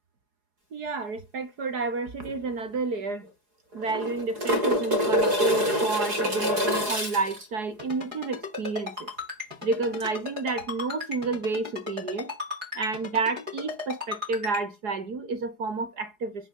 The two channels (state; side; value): late; left; 4.8 ms